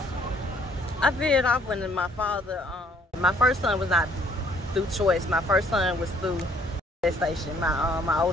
I veered off when my father, my first son was not through choice. My first son was through gestation. My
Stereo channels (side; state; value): both; normal; correlation 0.62